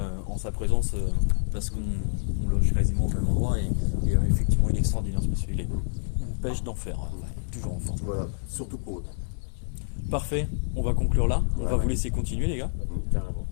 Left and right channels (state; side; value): silent; right; 59 dB below the other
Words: en sa présence parce qu'on loge quasiment au même endroit et effectivement, il est extraordinaire ce monsieur. Il est pêche d'enfer, toujours en forme. voilà, surtout pour eux. Parfait, on va conclure là. On va Ouais. vous laisser continuer, les gars. Carrément.